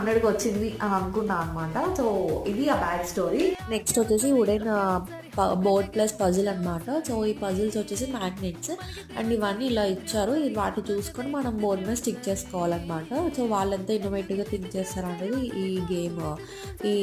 వచ్చింది అని అనుకున్నాను అనమాట. సో ఇది ఆ బ్యాగ్ స్టోరీ. నెక్స్ట్ వచ్చేసి వుడెన్ బోర్డ్ ప్లస్ పజిల్ అనమాట. సో ఈ పజిల్స్ వచ్చేసి మ్యాగ్నెట్స్ అండ్ ఇవన్నీ ఇలా ఇచ్చారు. వాటి చూసుకొని మనం బోర్డ్ మీద స్టిక్ చేసుకోవాలన్నమాట. సో వాళ్ళంతా ఇన్నోవేటివ్గా థింక్ చేస్తారనేది ఈ గేమ్ ఈ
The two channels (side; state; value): both; identical; correlation 1.00